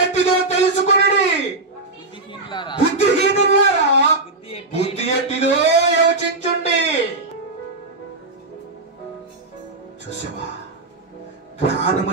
ఎట్టిదో తెలుసుకుని వారులారా, బుద్ధిహీనులారా, బుద్ధి బుద్ధి ఎట్టిదో యోచించుండి. చూసావా, జ్ఞానము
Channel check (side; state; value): left; quieter; 3.2 dB